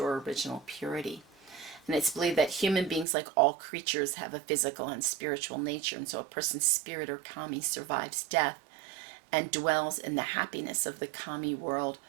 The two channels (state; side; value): drops out; left; at 3.1 s